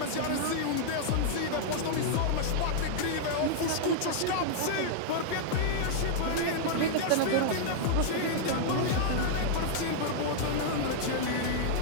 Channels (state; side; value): different; both; correlation -0.01